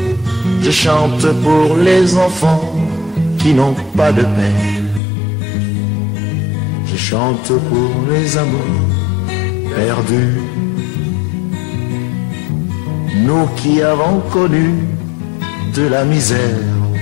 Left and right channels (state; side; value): drops out; right; at 5.0 s